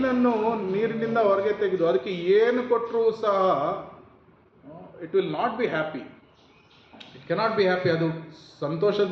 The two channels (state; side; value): identical; both; correlation 1.00